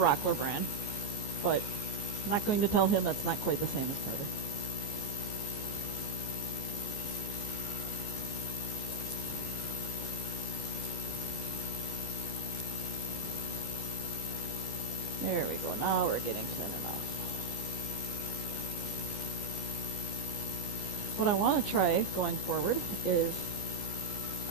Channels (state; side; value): late; right; 14 ms